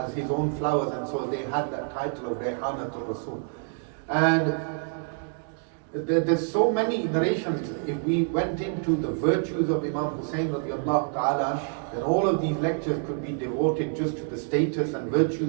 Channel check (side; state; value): left; silent; 60 dB below the other